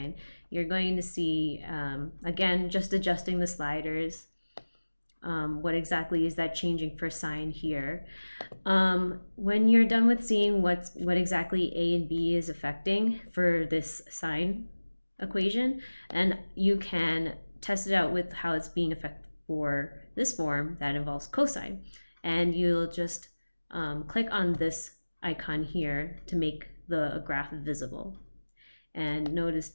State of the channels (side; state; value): both; inverted; correlation -1.00